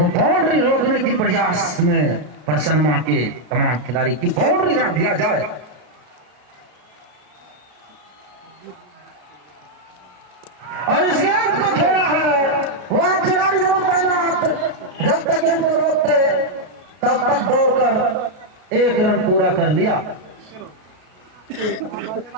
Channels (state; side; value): late; left; 33 ms